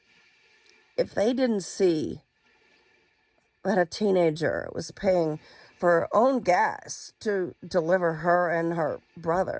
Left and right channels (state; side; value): identical; both; correlation 1.00